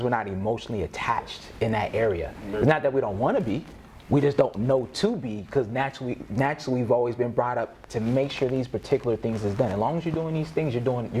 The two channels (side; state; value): both; identical; correlation 1.00